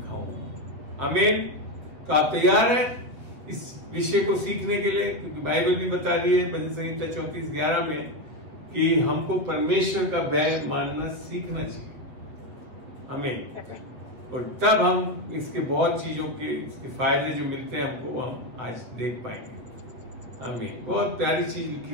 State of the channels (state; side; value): late; left; 8.0 ms